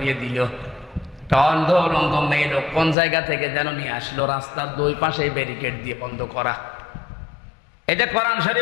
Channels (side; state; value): right; drops out; at 3.0 s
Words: দিল। অন্ধ উলঙ্গ মেয়ে লোক কোন জায়গা থেকে যেন নিয়ে আসলো, রাস্তার 2 পাশে ব্যারিকেড দিয়ে বন্ধ করা। এটা কোরআন